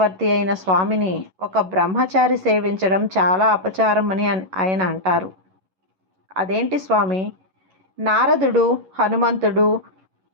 అయిన స్వామిని ఒక బ్రహ్మచారి సేవించడం చాలా అపచారం అని ఆయన అంటారు. అదేంటి స్వామి, నారదుడు, హనుమంతుడు,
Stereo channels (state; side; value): late; left; 11 ms